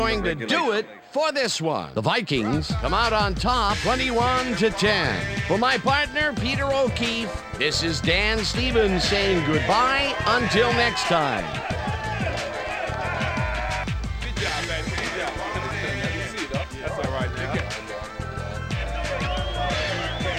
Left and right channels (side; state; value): both; identical; correlation 1.00